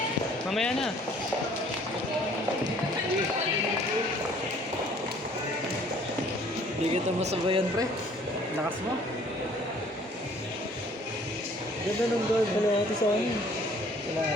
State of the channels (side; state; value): both; normal; correlation 0.56